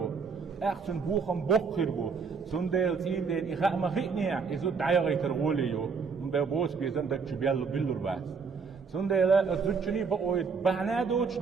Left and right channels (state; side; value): quieter; left; 5.3 dB